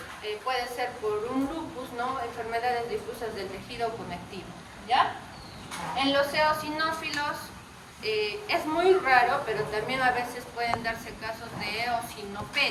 puede ser por un lupus, ¿no? Enfermedades difusas del tejido conectivo, ¿ya? En los eosinófilos es muy raro, pero también a veces pueden darse casos de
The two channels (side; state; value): both; identical; correlation 1.00